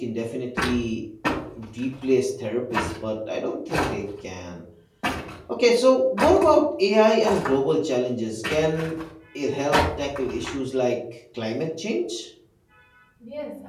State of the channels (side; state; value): both; identical; correlation 1.00